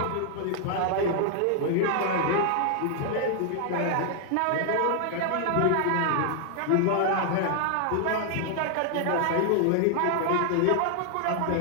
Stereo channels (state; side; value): different; both; correlation 0.00